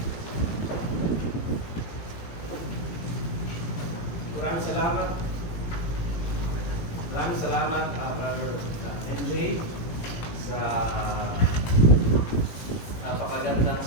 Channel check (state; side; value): late; right; 18 ms